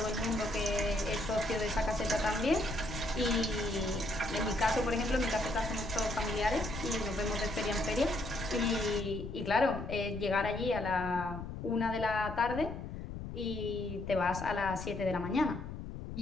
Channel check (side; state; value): left; noise; rumble, 8 dB below the sound